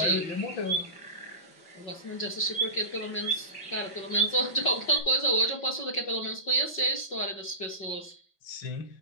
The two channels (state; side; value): late; right; 5.4 ms